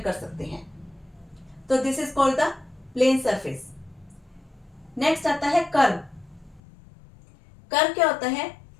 कर सकते हैं। तो this is called the plane surface. Next आता है कर्व। कर्व क्या होता है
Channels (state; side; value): drops out; right; at 6.6 s